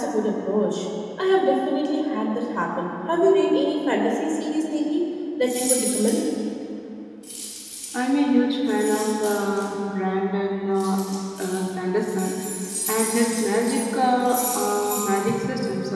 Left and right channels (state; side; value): identical; both; correlation 1.00